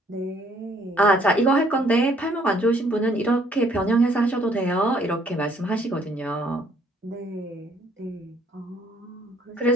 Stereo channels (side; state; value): both; normal; correlation 0.64